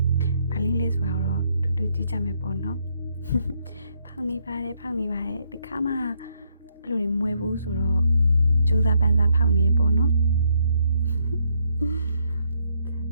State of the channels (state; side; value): inverted; both; correlation -0.74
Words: ဘာလေးလဲဆိုတော့တူကြည့်ကြမယ်ပေါ့နော်ဖောက်နေပါတယ်ဒီခါမှအဲ့လိုမွေဘူးဆိုတော့ကြိုးစားပန်းစားဖောက်နေပေါ့နော်